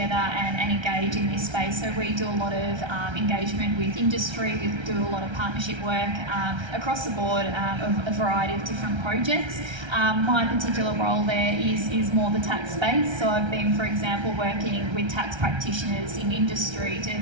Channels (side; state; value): left; late; 1.3 ms